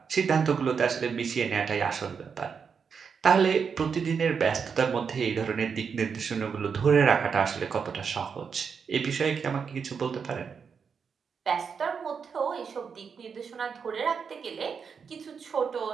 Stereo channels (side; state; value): left; quieter; 6.2 dB